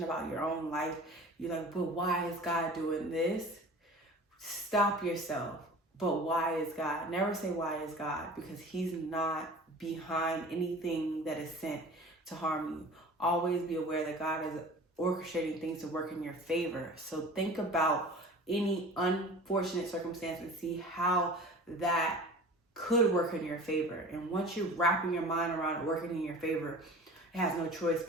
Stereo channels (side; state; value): both; normal; correlation 0.40